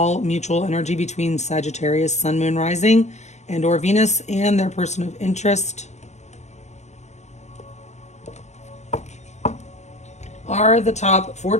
mutual energy between Sagittarius, Sun, Moon, Rising, and or Venus, and their person of interest. Are the top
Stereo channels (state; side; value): late; right; 0.33 ms